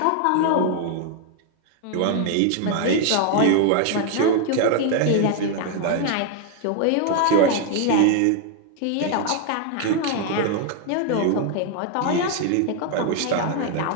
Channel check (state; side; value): different; both; correlation 0.00